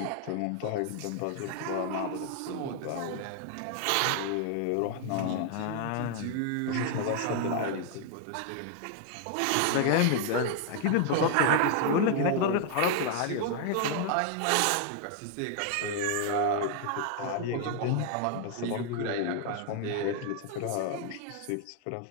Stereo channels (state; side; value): different; both; correlation 0.00